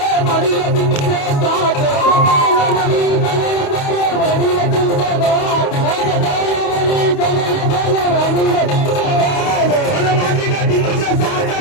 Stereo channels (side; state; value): right; late; 28 ms